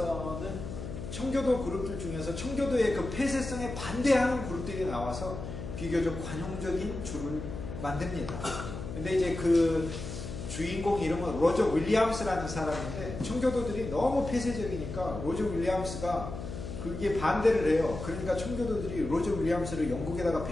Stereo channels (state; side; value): noise; left; hum, 8 dB below the sound